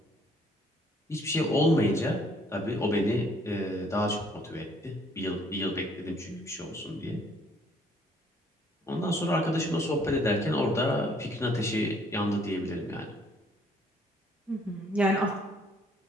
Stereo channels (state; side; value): normal; both; correlation 0.62